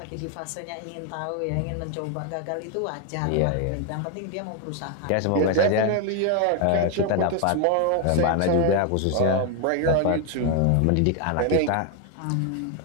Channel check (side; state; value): both; different; correlation 0.01